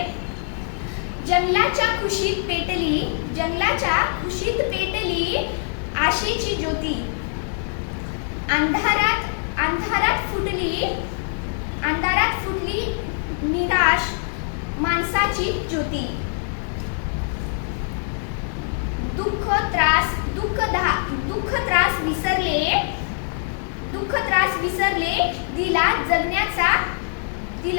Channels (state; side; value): silent; right; 62 dB below the other